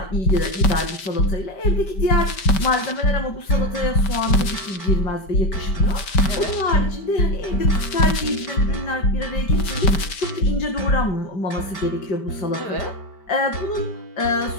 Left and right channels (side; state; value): right; late; 5.1 ms